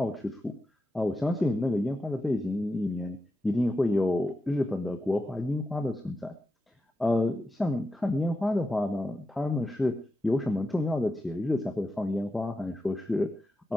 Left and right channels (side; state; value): both; normal; correlation 0.90